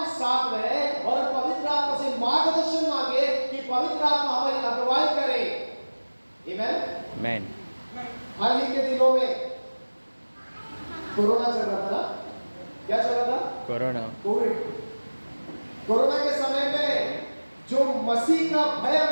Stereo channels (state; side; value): inverted; both; correlation -1.00